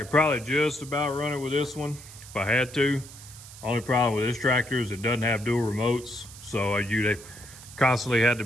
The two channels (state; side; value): noise; right; hiss, 17 dB below the sound